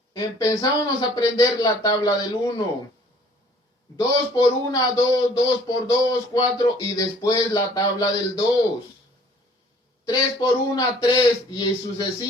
Empezábamos a aprender la tabla del 1. 2 por 1, 2, 2 por 2, 4 y después la tabla del 2. 3 por 1, 3 y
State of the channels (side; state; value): both; normal; correlation 0.55